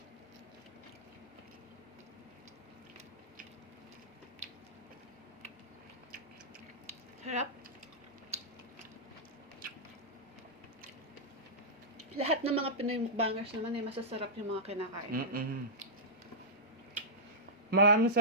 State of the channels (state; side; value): normal; both; correlation -0.13